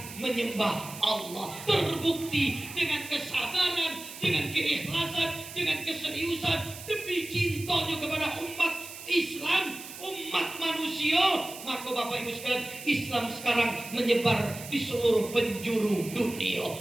menyembah Allah. Terbukti dengan kesabaran, dengan keikhlasan, dengan keseriusan demi cintanya kepada umat Islam, umat manusia. Maka Bapak Ibu sekalian, Islam sekarang menyebar di seluruh penjuru dunia.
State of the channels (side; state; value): right; noise; hiss, 13 dB below the sound